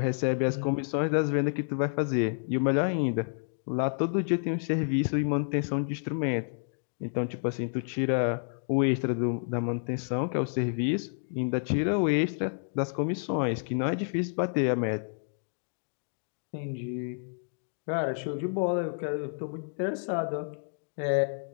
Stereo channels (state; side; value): silent; right; digital silence